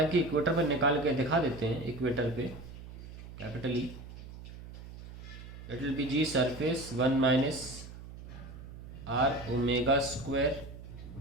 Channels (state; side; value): noise; right; hum, 14 dB below the sound